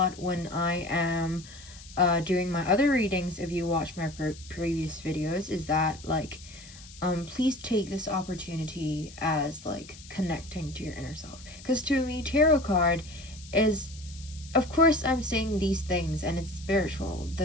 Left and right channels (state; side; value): noise; left; hiss, 19 dB below the sound